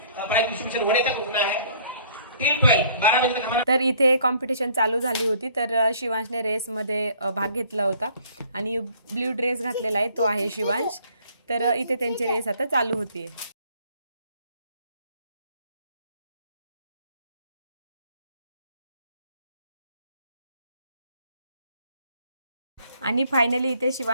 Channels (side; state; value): both; inverted; correlation -0.58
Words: प्राइज डिस्ट्रीब्यूशन होने तक रुकना है. टिल 12 बजे तक हमारा. तर इथे कॉम्पिटिशन चालू झाली होती. तर शिवांशने रेसमध्ये भाग घेतला होता आणि ब्ल्यू ड्रेस घातलेला आहे, तो आहे शिवांश. तर इथे त्यांची रेस आता चालू होती. आणि फायनली इथे